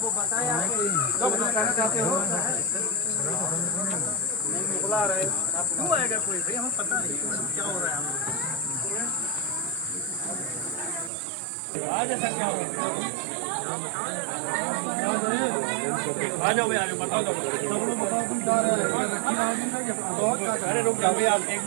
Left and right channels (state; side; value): drops out; left; at 11.1 s